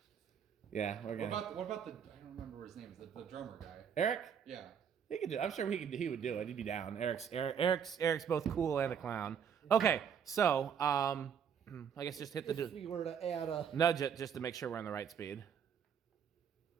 Yeah, we're gonna. What about the? I don't remember his name. The drummer guy. Eric? Yeah. He could do. I'm sure he would do it. He'd be down. Eric's both cool and a clown. Okay, so I guess just hit the If we were to add a. nudge it just to make sure we're on the right speed.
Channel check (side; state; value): left; quieter; 7.7 dB